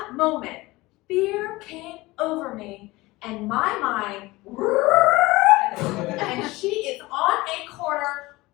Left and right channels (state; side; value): quieter; right; 20.7 dB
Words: moment, fear came over me, and my mind, and she is on a corner,